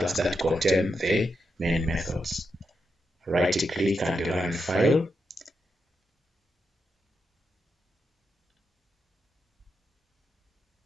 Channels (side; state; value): both; normal; correlation 0.85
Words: that contains the main methods. Right click and run file.